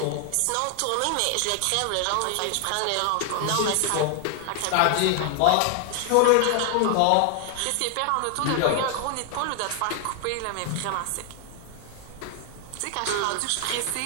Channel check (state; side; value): different; both; correlation 0.00